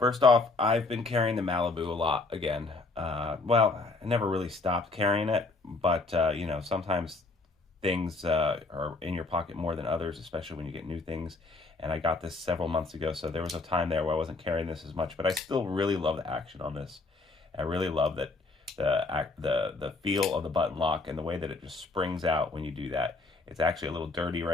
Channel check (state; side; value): quieter; right; 3.5 dB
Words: off, I've been carrying the Malibu a lot again. Well, I never really stopped carrying it, but sometimes things are in your pocket more than others, especially when you get new things. And I got this several months ago, so there was a time there where I wasn't carrying this as much, but I still really love the action on this. I really love that the feel of the button lock and the way that it just springs out when you do that. It's actually a little dirty